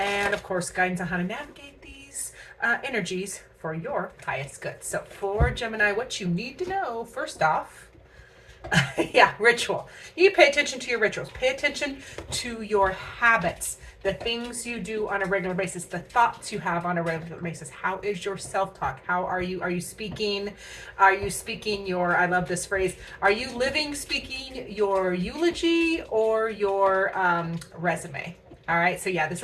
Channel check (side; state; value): both; identical; correlation 1.00